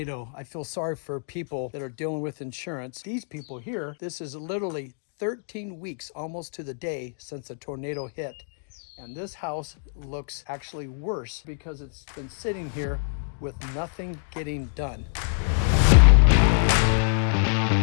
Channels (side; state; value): right; silent; 61 dB below the other